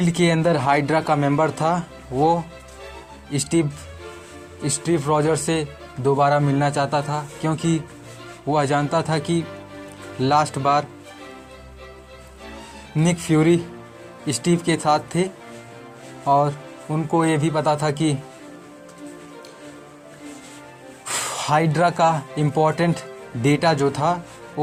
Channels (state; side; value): identical; both; correlation 1.00